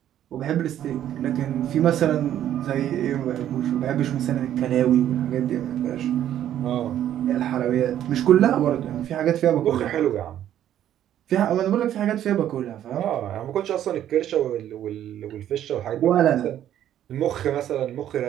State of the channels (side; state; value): left; quieter; 11.3 dB